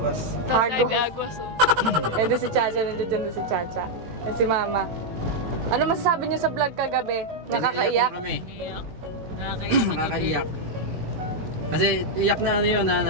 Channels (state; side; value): late; left; 18 ms